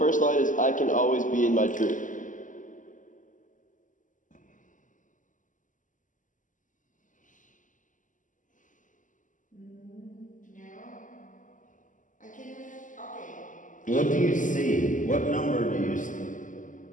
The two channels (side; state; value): right; late; 0.37 ms